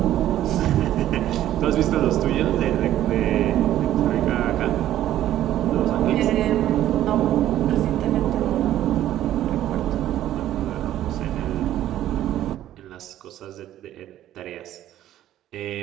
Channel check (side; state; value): left; quieter; 12.7 dB